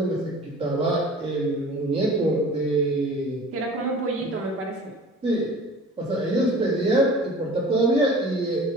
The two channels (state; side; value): normal; both; correlation 0.43